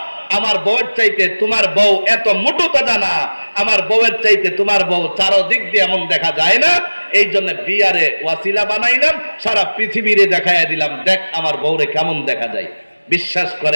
আমার বউয়ের চাইতে তোমার বউ এত মোটু তাজা না, আমার বউয়ের চাইতে তোমার বউ চারদিক দিয়ে এমন দেখা যায় না। এই জন্য বিয়ারে ওয়াসিলা বানাইলাম, সারা পৃথিবীরে দেখাইয়া দিলাম, দেখ আমার বউরে কেমন দেখা যায়। বিশ্বাস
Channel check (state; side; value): inverted; both; correlation -1.00